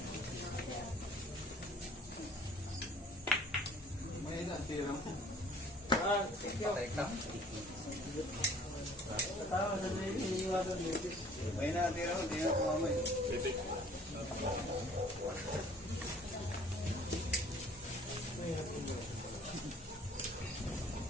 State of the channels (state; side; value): normal; both; correlation 0.53